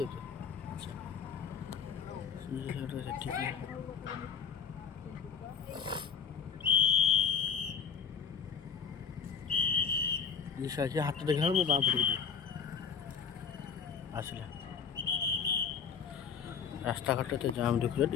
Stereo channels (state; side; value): quieter; right; 6.8 dB